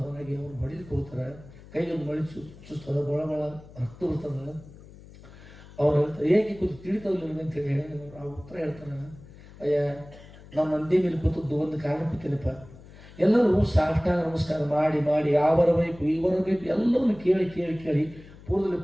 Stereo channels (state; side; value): noise; left; hum, 20 dB below the sound